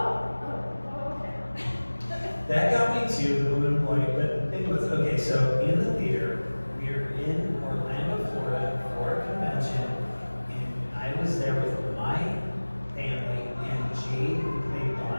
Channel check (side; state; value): both; inverted; correlation -1.00